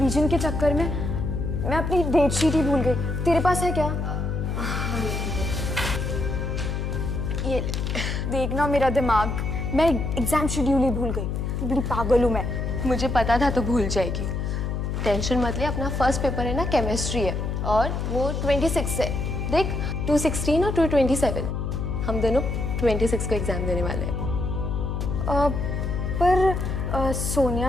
के चक्कर में मैं अपनी डेट शीट ही भूल गई। तेरे पास है क्या? ये देखना मेरा दिमाग, मैं एग्जाम शेड्यूल ही भूल गई। बड़ी पागल हूँ मैं। मुझे पता था तो भूल जाएगी। टेंशन मत ले, अपना फर्स्ट पेपर है ना, केमिस्ट्री है और वो 26 है। देख 216 और 227, हम दोनों 26 को एग्जाम देने वाले हैं। पर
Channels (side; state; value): left; noise; hum, 2 dB below the sound